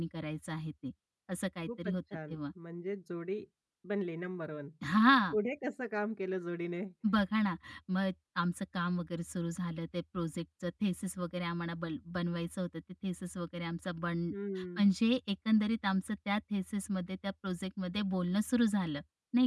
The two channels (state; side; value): identical; both; correlation 1.00